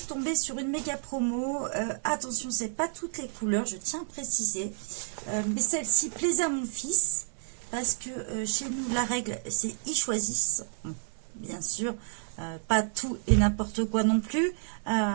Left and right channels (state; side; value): silent; left; 58 dB below the other